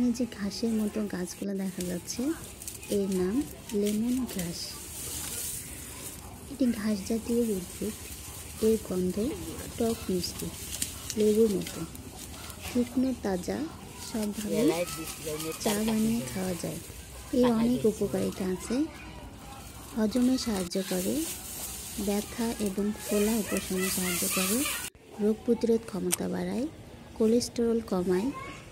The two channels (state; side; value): identical; both; correlation 1.00